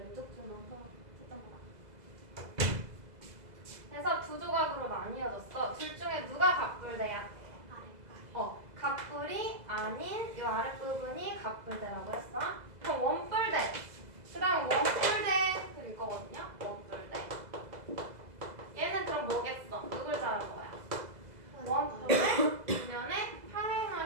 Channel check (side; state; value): left; late; 2.0 ms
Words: 줄만 채점 보라. 그래서 두 조각으로 나뉘어졌어. 둘 중에 누가 각불대야? 각불이 아닌 이 아랫부분이 각불대라고 했어. 그럼 원뿔대. 그 다음 원뿔대 일 거거든요. 원뿔대. 얘는 그럼 뭐겠어? 누굴 자른 거야? 원뿔을 뒷면에